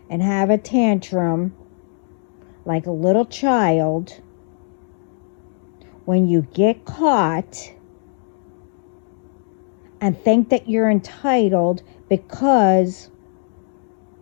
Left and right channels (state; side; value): silent; right; digital silence